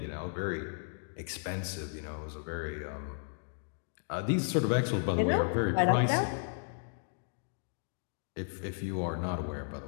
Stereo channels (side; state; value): right; silent; digital silence